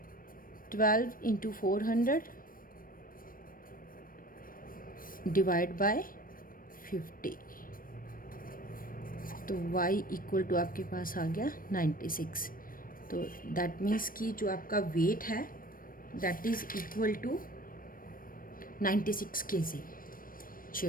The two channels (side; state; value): right; late; 0.41 ms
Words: 12 into 400 divide by 50, तो y इक्वल टू आपके पास आ गया 96। तो दैट मीन्स कि जो आपका वेट है that is equal to 96 kg